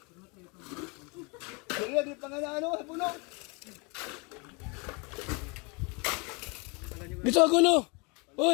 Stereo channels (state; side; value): quieter; right; 30.5 dB